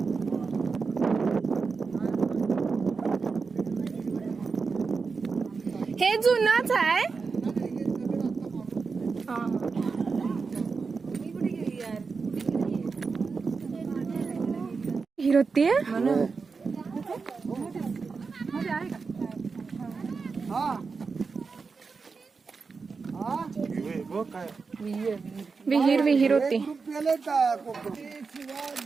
हे जुनच आहे. हिरोती विहीर होती.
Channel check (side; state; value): left; quieter; 4.8 dB